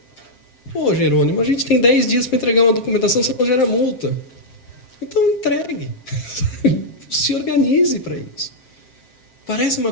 Pô, Jerônimo, a gente tem 10 dias para entregar uma documentação, você não gera multa. Então, entregue. Se organize para isso. Parece uma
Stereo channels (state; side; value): late; right; 7.6 ms